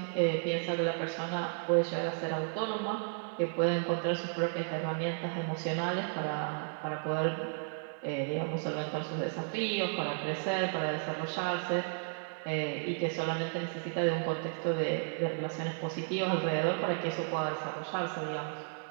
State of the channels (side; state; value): left; silent; 55 dB below the other